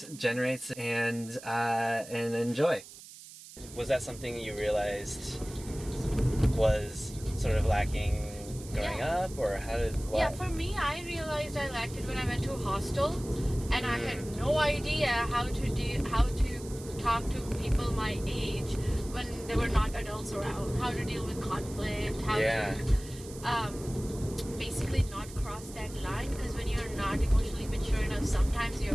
generates, and enjoy. Was that something you realized was sort of lacking growing up, or how did what? Yeah, for me, I realized I lacked it when I went to a hostel, and I had no idea how to talk to people my age when there were not adults around, how to deal with conflict, how to basically not cross that line, because when you're not emotionally mature enough, sometimes your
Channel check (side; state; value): right; noise; hiss, 16 dB below the sound